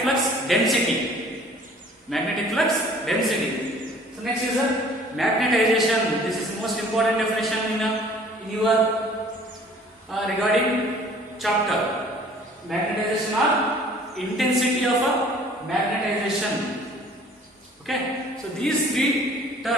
flux density. Magnetic flux density. So next is a magnetization. This is most important definition in your regarding chapter. Magnetization or intensity of a magnetization. Okay, so these three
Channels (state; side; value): normal; both; correlation 0.52